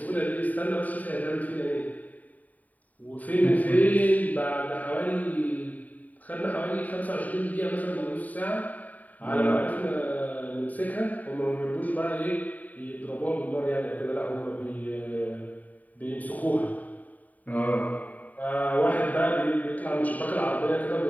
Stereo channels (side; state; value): right; late; 0.075 ms